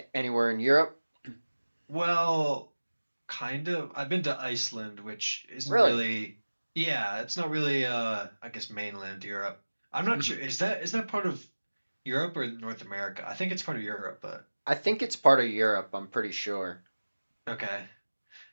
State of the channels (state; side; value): inverted; both; correlation -1.00